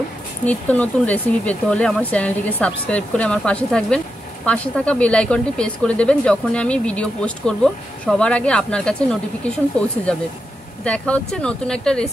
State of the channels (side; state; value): both; normal; correlation 0.86